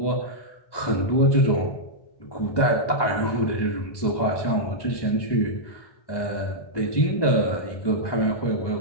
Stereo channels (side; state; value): right; late; 1.2 ms